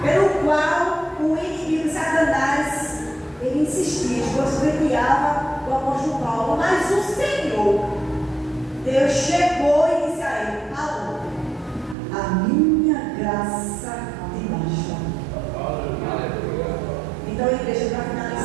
pelo qual o inimigo Satanás, ele insistia, esbofeteava o apóstolo Paulo, mas o Senhor, Deus chegou e disse a ele: Paulo, a minha graça te basta. Então, igreja, para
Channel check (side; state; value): left; drops out; at 12.0 s